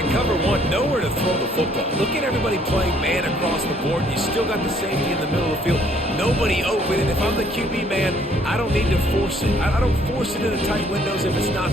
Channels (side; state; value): both; normal; correlation 0.63